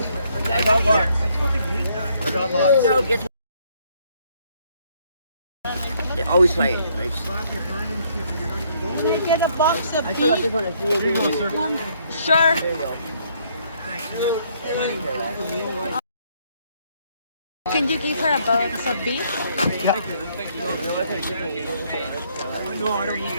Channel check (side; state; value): both; inverted; correlation -0.68